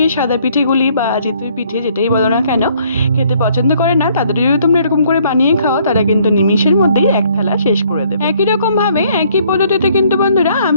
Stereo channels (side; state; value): both; inverted; correlation -0.64